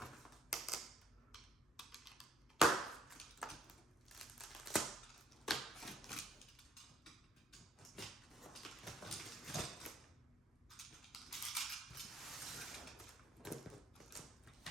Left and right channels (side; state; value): both; normal; correlation 0.65